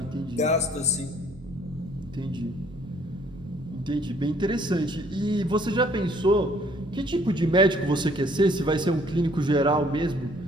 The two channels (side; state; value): both; normal; correlation 0.61